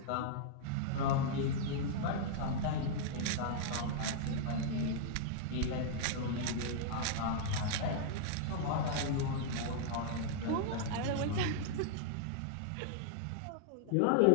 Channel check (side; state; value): both; different; correlation -0.01